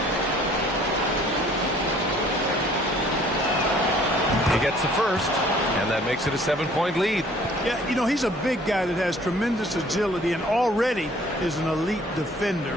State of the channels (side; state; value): both; normal; correlation 0.56